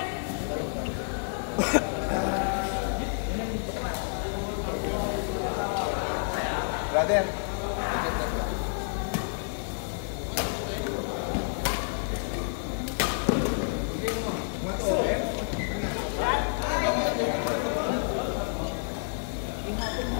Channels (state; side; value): silent; right; digital silence